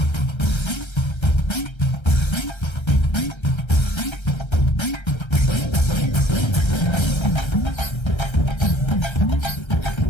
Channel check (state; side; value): late; right; 1.3 ms